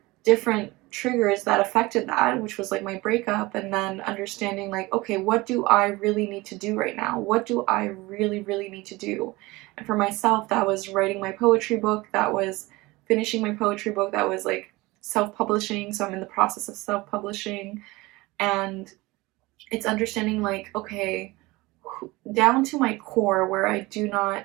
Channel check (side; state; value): left; quieter; 21.6 dB